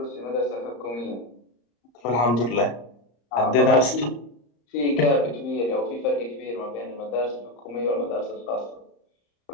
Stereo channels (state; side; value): late; right; 34 ms